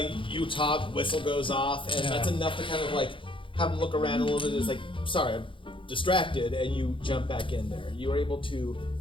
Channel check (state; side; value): late; right; 0.25 ms